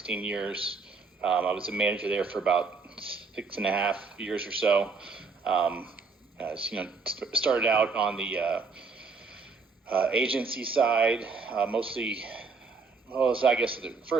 years. I was a manager there for about 6.5 years or so. Started out on the agency side, mostly. Well, so I guess at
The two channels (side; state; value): left; quieter; 4.4 dB